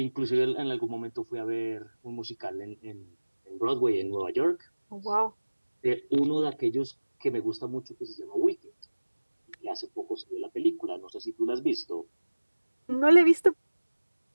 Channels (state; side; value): inverted; both; correlation -1.00